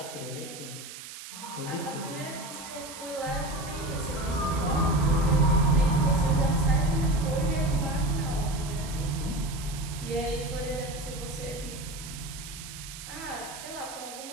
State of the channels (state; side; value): noise; right; hiss, 12 dB below the sound